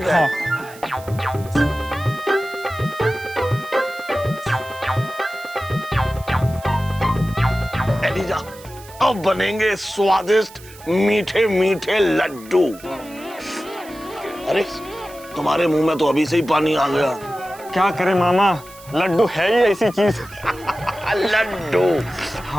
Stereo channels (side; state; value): right; noise; hiss, 20 dB below the sound